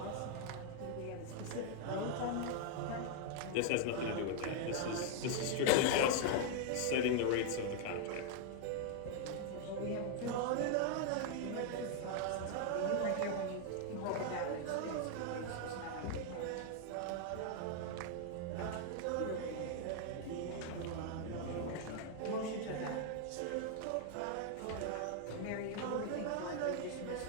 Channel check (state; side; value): different; both; correlation 0.00